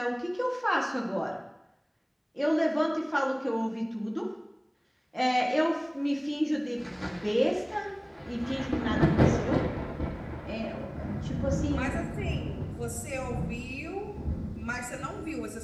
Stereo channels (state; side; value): identical; both; correlation 1.00